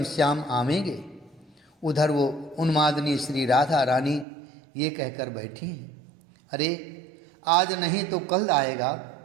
श्याम आवेंगे। उधर वो उन्मादनी श्री राधा रानी ये कहकर बैठी हैं, अरे आज नहीं तो कल आएगा,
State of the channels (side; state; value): left; drops out; at 4.2 s